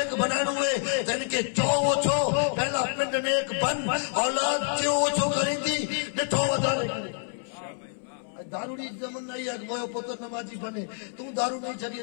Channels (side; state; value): right; silent; 60 dB below the other